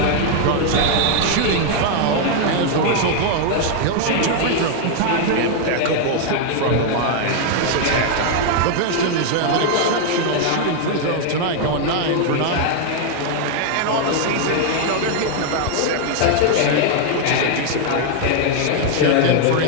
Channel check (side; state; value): both; different; correlation 0.00